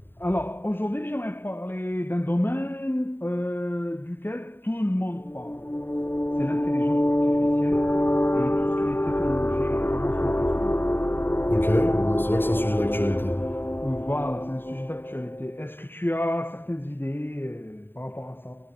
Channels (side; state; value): right; late; 0.099 ms